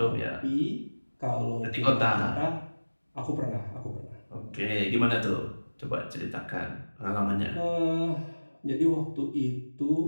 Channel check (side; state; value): both; inverted; correlation -1.00